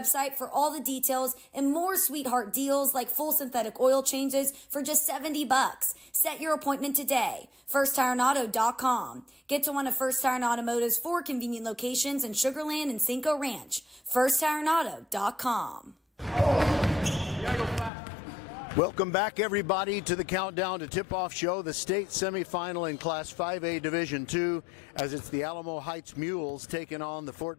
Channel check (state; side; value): drops out; right; at 17.9 s